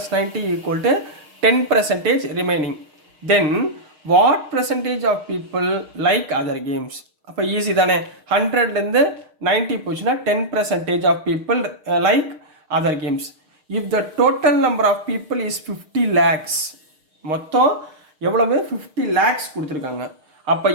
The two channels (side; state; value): left; late; 6.5 ms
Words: equal to 10% remaining. Then what percentage of people like other games? அப்போ ஈஸி தானே. 100லேருந்து 90 போச்சுன்னா 10% of people like other games. If the total number of people is 50 lakhs, மொத்தம் எவ்வளவு? 50 lakhs கொடுத்துருக்காங்க. அப்போ